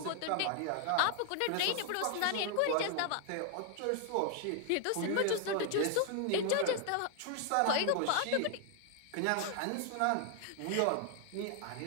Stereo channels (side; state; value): both; different; correlation 0.00